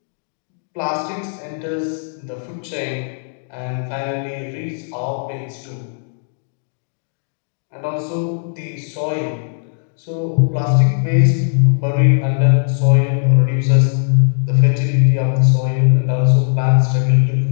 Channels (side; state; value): right; silent; digital silence